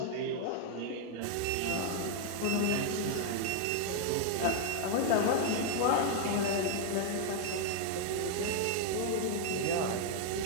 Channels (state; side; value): different; both; correlation 0.00